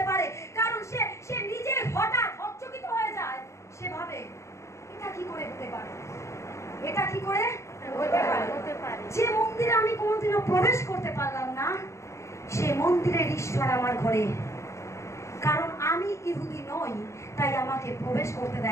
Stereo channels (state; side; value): late; right; 0.14 ms